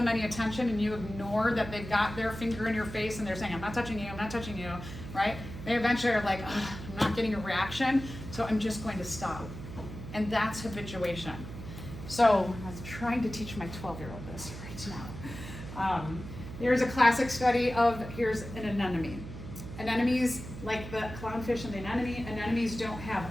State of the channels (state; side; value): noise; right; hum, 11 dB below the sound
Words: any attention and you ignore that they've got their finger in your face and they're saying, I'm not touching you, I'm not touching you, right? They eventually are like, I'm not getting a reaction, so I'm just going to stop. And that's habituation. So I was trying to teach my 12-year-old this right now. There's a classic study of, here's an anemone. Anemones, like the clownfish and the anemones don't have